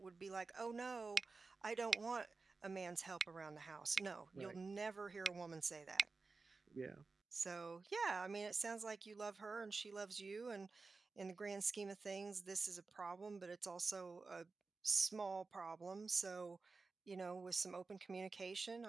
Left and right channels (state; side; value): quieter; left; 4.1 dB